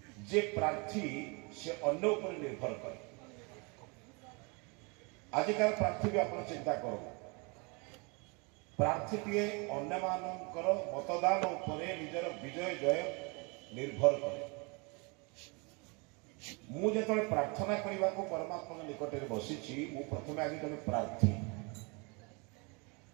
जे प्रार्थी से अन्य उपर निर्भर करे। आजिकार प्रार्थी भी आप चिंता करो प्रार्थीटीए अन्य मानकर मतदान उपरे निजर विजय जय निर्भर करे। मुझे प्रार्थना करने को परमात्मा निकट में बसी प्रथम आगे जन प्रार्थी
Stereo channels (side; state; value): left; quieter; 30.8 dB